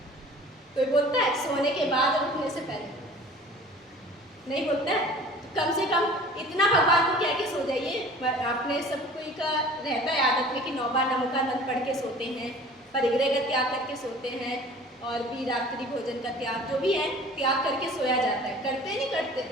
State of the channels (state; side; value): normal; both; correlation 0.45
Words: कोई बोलता है सोने के बाद और उठने से पहले? नहीं बोलता है। कम से कम इतना भगवान को कह के सो जाइए। आपने सब कोई का रहता है आदत में कि 9 बार नमोकार मंत्र पढ़ के सोते हैं, परिग्रह का त्याग करके सोते हैं, और भी रात्रि भोजन का त्याग, जो भी है त्याग करके सोया जाता है। करते नहीं करते?